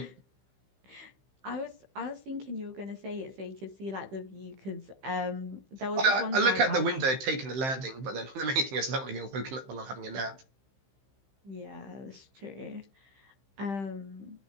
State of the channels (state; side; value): late; left; 15 ms